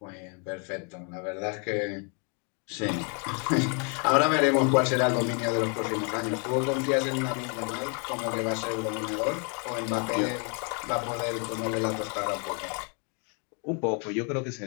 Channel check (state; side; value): quieter; right; 37.7 dB